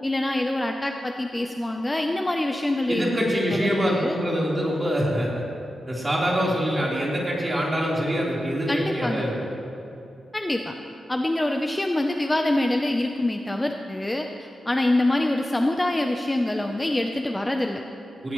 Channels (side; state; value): both; normal; correlation 0.93